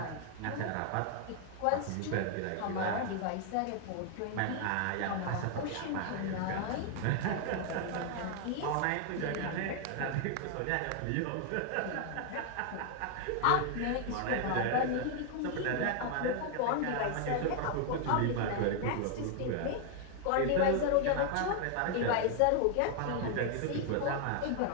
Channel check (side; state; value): both; different; correlation 0.00